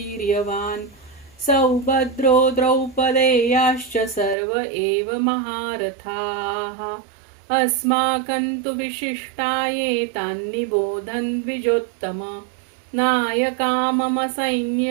सौभद्रो द्रौपदेयाश्च सर्व एव महारथाः अस्माकं तु विशिष्टाये तान्निबोधन् द्विजोत्तम नायका मम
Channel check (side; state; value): left; drops out; at 4.4 s